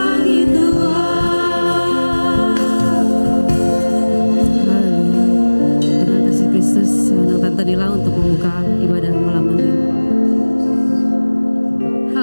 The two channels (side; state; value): both; inverted; correlation -1.00